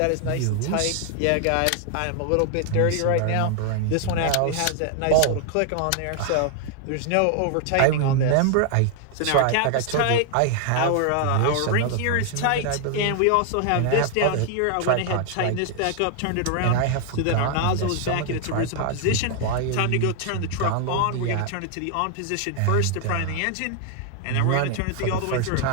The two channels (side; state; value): both; different; correlation 0.00